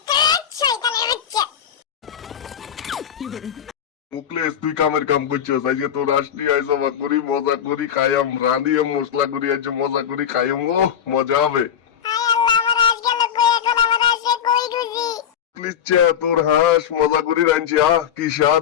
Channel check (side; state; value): right; quieter; 9.0 dB